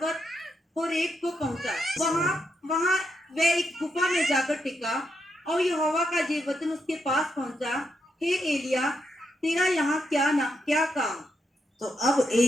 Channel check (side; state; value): both; normal; correlation 0.82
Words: होरेब को पहुंचा। वहां वह एक गुफा में जाकर टिका और यहोवा का ये वचन उसके पास पहुंचा, हे एलिया, तेरा यहाँ क्या काम। तो अब